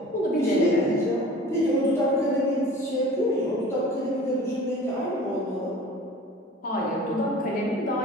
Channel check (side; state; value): both; normal; correlation 0.43